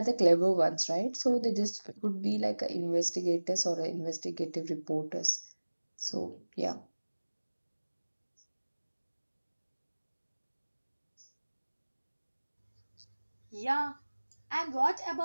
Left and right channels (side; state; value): both; inverted; correlation -1.00